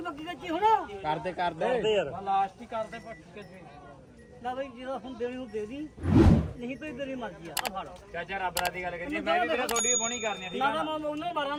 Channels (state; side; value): identical; both; correlation 1.00